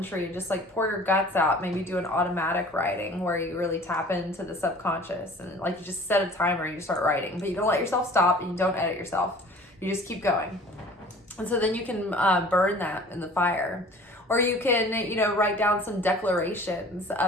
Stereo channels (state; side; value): normal; both; correlation 0.47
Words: and just like pour your guts out. Maybe do an automatic writing where you really tap into the subconscious, and like you just set a timer and you start writing, but you don't let yourself stop and you don't edit yourself. You just keep going. And so then you can burn that in the fire. Or you can, write down some declarations